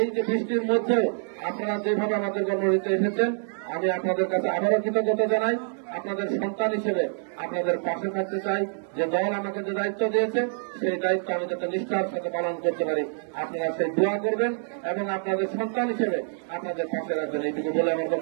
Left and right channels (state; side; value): silent; left; 61 dB below the other